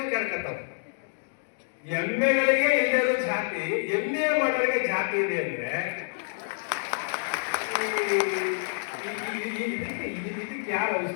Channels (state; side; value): silent; right; digital silence